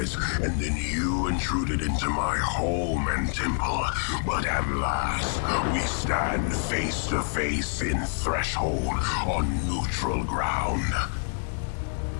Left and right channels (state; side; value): silent; right; 60 dB below the other